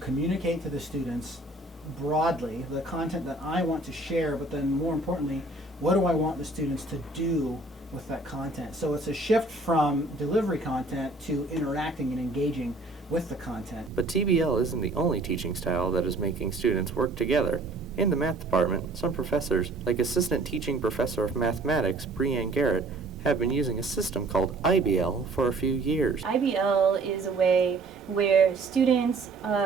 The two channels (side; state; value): left; quieter; 3.1 dB